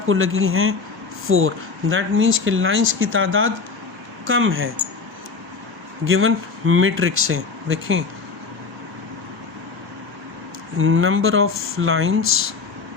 लगी हैं 4। दैट मीन्स कि लाइंस की तादाद कम है गिवन मैट्रिक्स से। देखें number of lines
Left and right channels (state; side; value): quieter; right; 4.7 dB